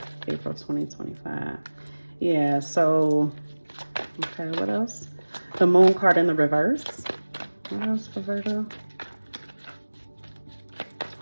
April 2025. Yeah, so, okay, what else? The Moon card in the reverse. What else for Virgo?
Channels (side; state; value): both; inverted; correlation -1.00